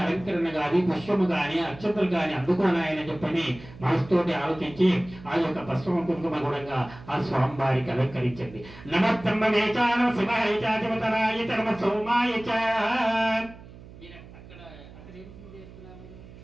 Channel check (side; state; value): right; noise; hum, 18 dB below the sound